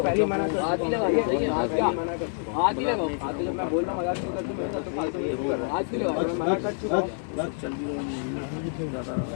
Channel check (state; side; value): silent; right; 60 dB below the other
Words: पहले मना कर हाथ ही लगा हाथ ही लगाओ, मैं बोल रहा हूं मजाक नहीं करते, मेरे साथ तो फालतू ये कर रहा हाथ ही लगाओ, मैं मना कर चुका हूं।